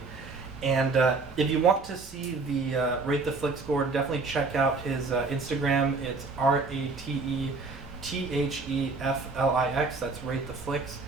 And if you want to see the Rate the Flick score, definitely check out his Instagram. It's RATETHEFLIX. That's Rate the Flicks.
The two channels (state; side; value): quieter; left; 3.9 dB